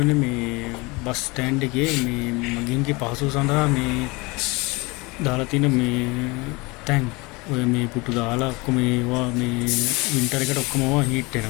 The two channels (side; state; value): right; quieter; 25.5 dB